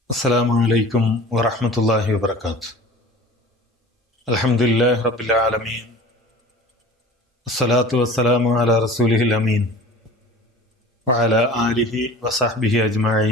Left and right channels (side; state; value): both; normal; correlation 0.41